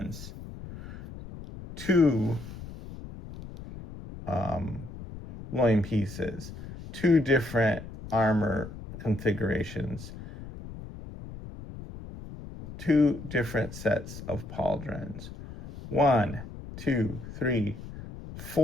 2 loin pieces. 2 different armor configurations. 2 different sets of pauldrons. 1, 2, 3,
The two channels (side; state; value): left; noise; rumble, 12 dB below the sound